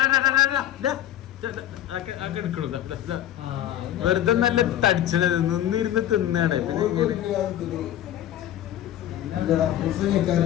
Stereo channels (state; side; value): quieter; right; 12.0 dB